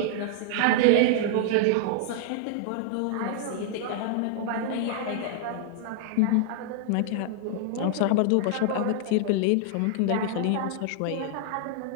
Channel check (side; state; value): both; different; correlation -0.01